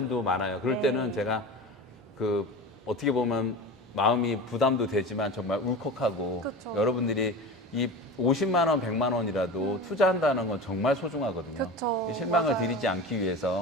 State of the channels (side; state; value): both; normal; correlation 0.31